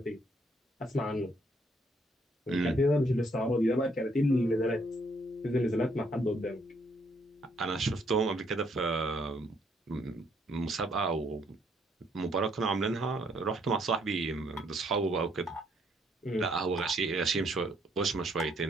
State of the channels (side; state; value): both; normal; correlation 0.69